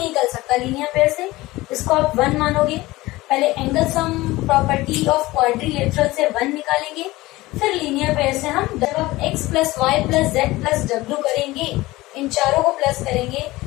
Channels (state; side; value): quieter; right; 19.2 dB